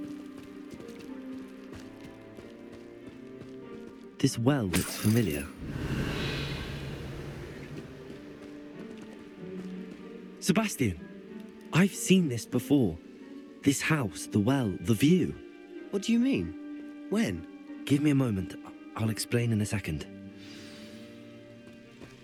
This well looks familiar. Sebastian, I've seen this before. This house, the well, the view. What do you mean? When? Give me a moment. I'll explain in a second.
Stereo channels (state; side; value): identical; both; correlation 1.00